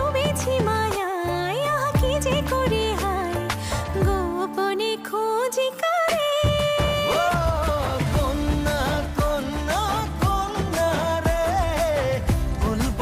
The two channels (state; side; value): identical; both; correlation 1.00